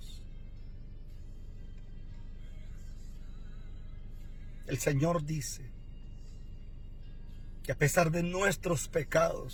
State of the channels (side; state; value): both; identical; correlation 1.00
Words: El Señor dice que a pesar de nuestros